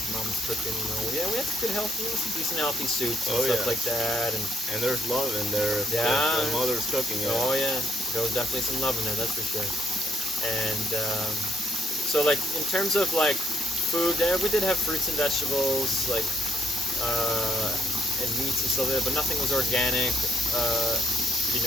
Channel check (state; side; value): normal; both; correlation 0.70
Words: mom's cooking. Yeah, we had some good healthy, some decent healthy soups and stuff like that. And there's love in there. Yeah. The mother's cooking it. Oh yeah, there was definitely some love in there. That's for sure. And so, like, in terms of like food, we did have fruits and vegetables, like and meats and stuff like that, but nothing was organic.